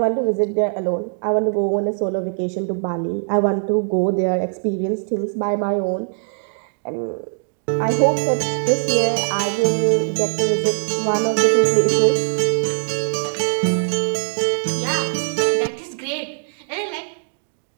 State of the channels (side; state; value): left; silent; digital silence